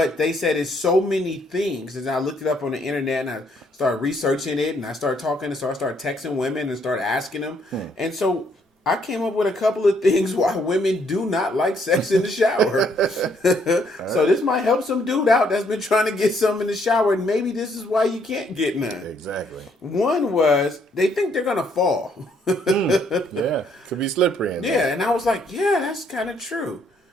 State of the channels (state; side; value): normal; both; correlation 0.69